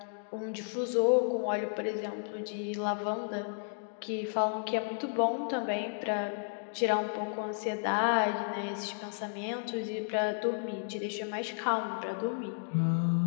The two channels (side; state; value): right; silent; digital silence